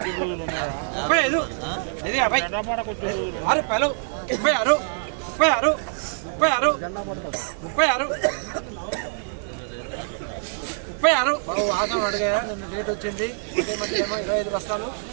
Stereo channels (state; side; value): silent; left; 62 dB below the other